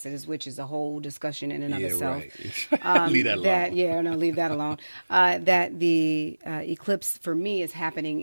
which is a whole discussion in and of itself. Right. Leave that alone. Leave that alone. That the eclipse for me is happening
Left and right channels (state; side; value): inverted; both; correlation -1.00